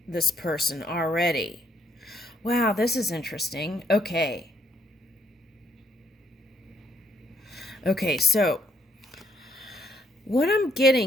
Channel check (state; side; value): normal; both; correlation 0.71